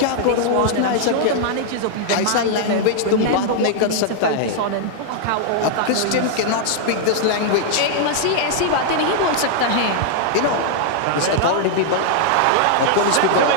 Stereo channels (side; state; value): both; different; correlation 0.00